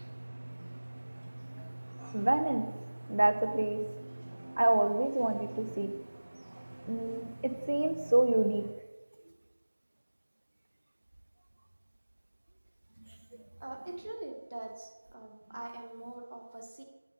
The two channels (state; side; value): inverted; both; correlation -1.00